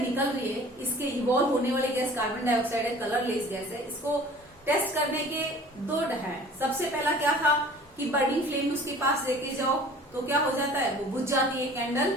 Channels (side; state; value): both; normal; correlation 0.47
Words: निकल रही है, इसके इवॉल्व होने वाली गैस कार्बन डाइऑक्साइड है, कलरलेस गैस है. इसको टेस्ट करने के दो है. सबसे पहला क्या था कि बर्निंग फ्लेम उसके पास लेके जाओ तो क्या हो जाता है? वो बुझ जाती है. Candle